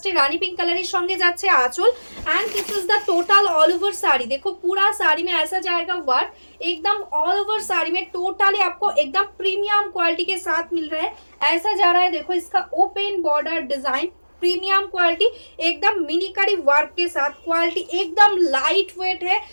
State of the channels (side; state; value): both; inverted; correlation -1.00